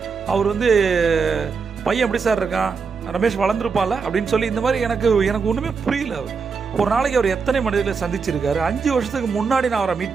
அவர் பையன் எப்படி சார் இருக்கான், ரமேஷ் வளர்ந்துருப்பான்ல அப்படின்னு சொல்லி, இந்த மாதிரி எனக்கு ஒன்றுமே புரியல. ஒரு நாளைக்கு அவர் எத்தனை மனிதர்களை சந்திச்சிருக்காரு. 5 வருஷத்துக்கு முன்னாடி நான் அவரை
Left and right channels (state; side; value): quieter; left; 5.3 dB